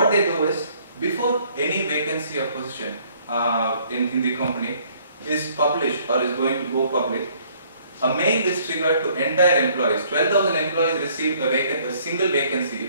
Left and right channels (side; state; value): both; inverted; correlation -0.61